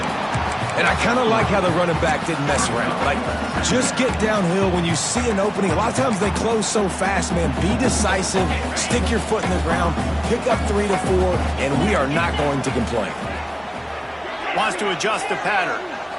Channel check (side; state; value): both; identical; correlation 1.00